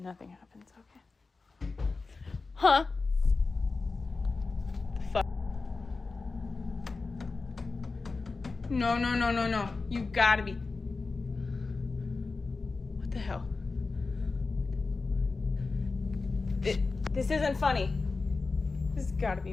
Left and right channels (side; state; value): right; quieter; 4.0 dB